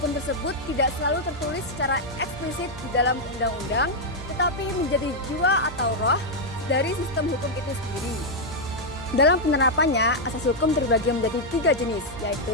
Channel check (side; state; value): both; normal; correlation -0.01